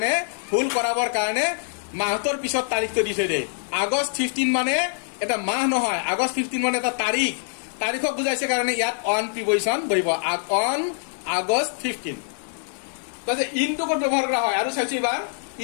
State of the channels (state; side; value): silent; right; digital silence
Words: ভুল কৰাবৰ কাৰণে মাহটোৰ পিছত তাৰিখটো দি থৈ দিয়ে। আগষ্ট 15 মানে এটা মাহ নহয়, আগষ্ট 15 মানে এটা তাৰিখ, তাৰিখক বুজাইছে কাৰণে ইয়াত অন প্ৰিপজিশ্যন বহিব, অন আগষ্ট 15। তাৰপিছত ইনটো ক'ত ব্যৱহাৰ কৰা হয় আৰু চাইছো এইবাৰ,